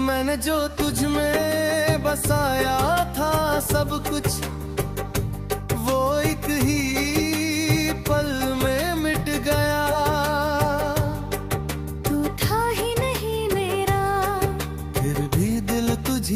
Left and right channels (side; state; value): both; identical; correlation 1.00